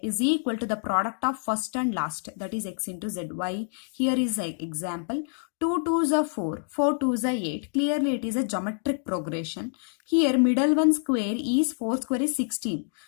is equal to the product of first and last, that is x into z. Y here is an example. 2 2s are 4, 4 2s are 8. Clearly it is a geometric progression. Here middle one square is 4 square is 16.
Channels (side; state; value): right; silent; 60 dB below the other